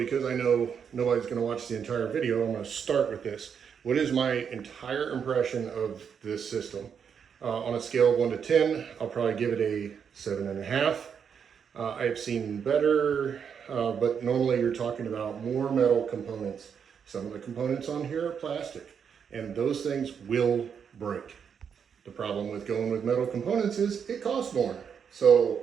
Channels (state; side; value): quieter; left; 7.2 dB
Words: because I know nobody's going to watch the entire video, I'm going to start with this. What is my entire impression of this system? On a scale of 1 to 10, I'll probably give it a 7.5. I've seen better, but normally you're talking about more metal components. Some of the components on here are plastic, and those things will break. The problem with going with metal components is it costs more.